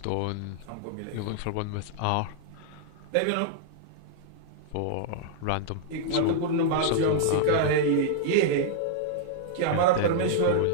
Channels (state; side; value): different; both; correlation -0.01